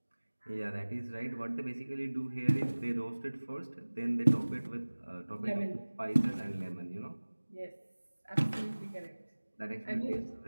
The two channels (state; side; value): inverted; both; correlation -1.00